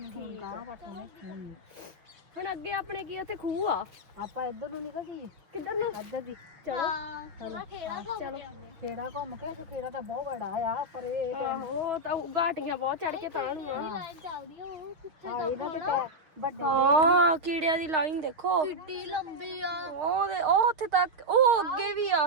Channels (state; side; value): late; left; 6.6 ms